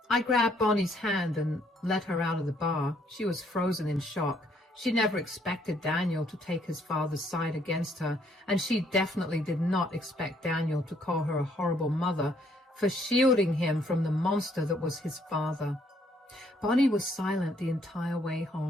I grabbed Bonnie's hand and let her out of the bar. She was frozen in shock. She never expected Daniel to take his father's side against her, and she definitely did not expect Daniel to call her a horrible mother for shielding him from the monster that was his father. Bonnie was silent the entire way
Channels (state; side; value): normal; both; correlation 0.68